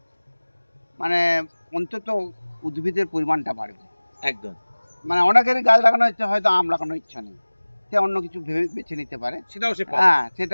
মানে অন্তত উদ্ভিদের পরিমাণটা বাড়বে। একদম, মানে অনেকেরই গাছ লাগানোর ইচ্ছা, হয়তো আম লাগানোর ইচ্ছা নেই, সে অন্য কিছু ভেবে বেছে নিতে পারে, সেটাও সে পাবে। হ্যাঁ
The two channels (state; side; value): inverted; both; correlation -1.00